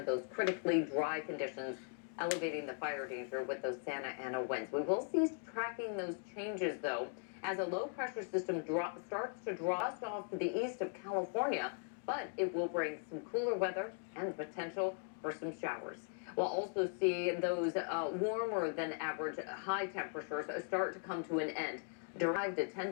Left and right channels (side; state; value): right; silent; 52 dB below the other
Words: those critically dry conditions elevating the fire danger with those Santa Ana winds. We will cease tracking those changes, though, as a low pressure system starts to draw us off to the east of California, but it will bring some cooler weather and the potential for some showers. We'll also see those warmer than average high temperatures start to come to an end. Derived to 10